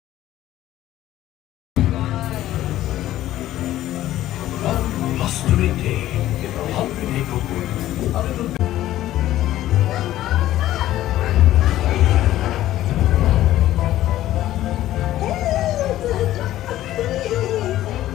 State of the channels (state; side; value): quieter; right; 14.0 dB